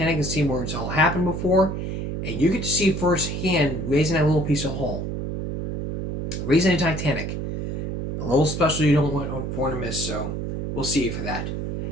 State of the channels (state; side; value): noise; right; hum, 3 dB below the sound